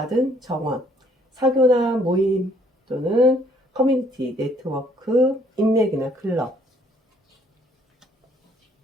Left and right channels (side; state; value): both; normal; correlation 0.64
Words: 정원, 사교나 모임 또는 커뮤니티, 네트워크, 인맥이나 클럽.